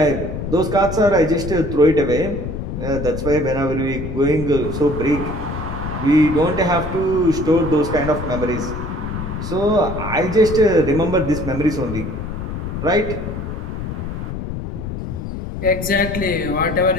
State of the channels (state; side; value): noise; left; rumble, 6 dB below the sound